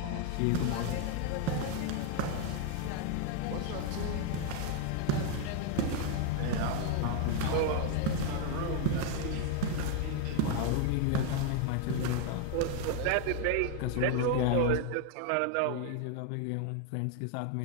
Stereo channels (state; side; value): different; both; correlation 0.01